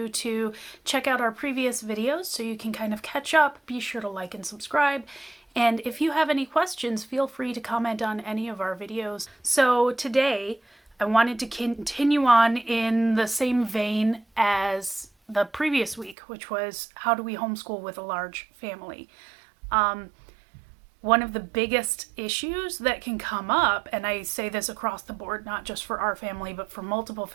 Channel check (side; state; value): left; drops out; at 16.2 s